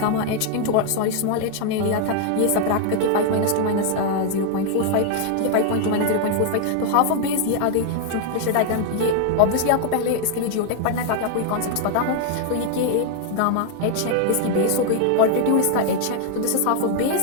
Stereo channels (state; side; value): different; both; correlation 0.00